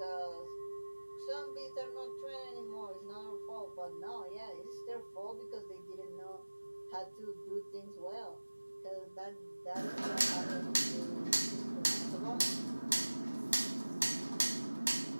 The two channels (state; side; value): inverted; both; correlation -1.00